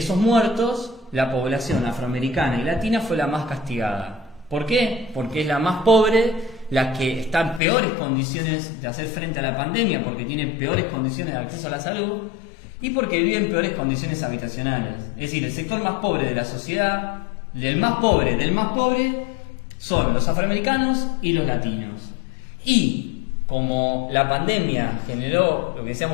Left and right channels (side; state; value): right; drops out; at 7.6 s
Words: muertos, la población afroamericana y latina fue la más castigada. ¿Por qué? Porque es la más pobre, la que está en peores condiciones de hacer frente a la pandemia, porque tiene peores condiciones de acceso a la salud, y porque vive en peores condiciones habitacionales. Es decir, el sector más pobre de la sociedad, del más pobre, son los afroamericanos y los latinos. Y como la pandemia generó, lo que